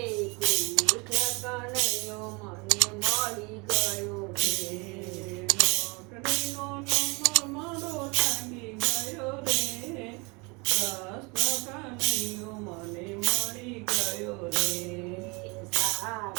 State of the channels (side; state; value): left; quieter; 28.6 dB